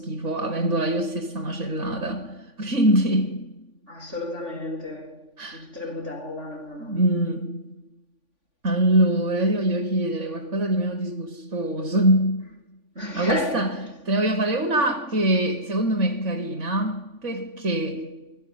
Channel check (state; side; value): late; left; 3.5 ms